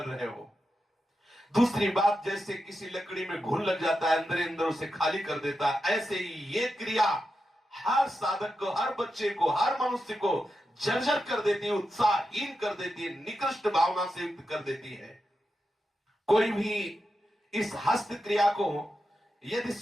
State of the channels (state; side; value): normal; both; correlation 0.88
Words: रहे हो। दूसरी बात, जैसे किसी लकड़ी में घुन लग जाता है, अंदर अंदर उसे खाली कर देता है, ऐसे ही ये क्रिया हर साधक को, हर बच्चे को, हर मनुष्य को जर्जर कर देती है, उत्साहहीन कर देती है, निकृष्ट भावना से युक्त कर देती है। कोई भी इस हस्त क्रिया को यदि